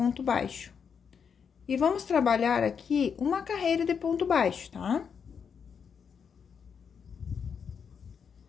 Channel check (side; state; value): right; quieter; 6.7 dB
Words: baixo. E vamos trabalhar aqui uma carreira de ponto baixo, tá?